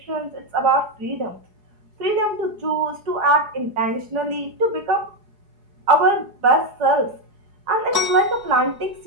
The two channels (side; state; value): left; late; 4.8 ms